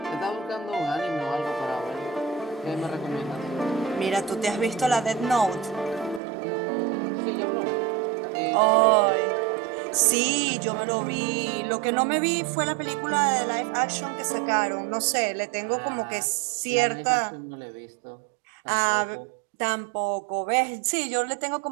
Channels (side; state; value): left; drops out; at 6.2 s